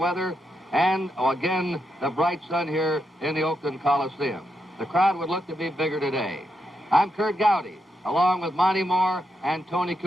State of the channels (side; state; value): both; normal; correlation 0.83